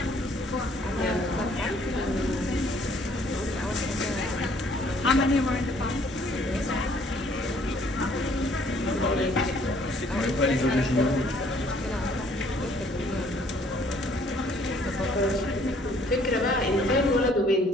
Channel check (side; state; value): both; normal; correlation 0.61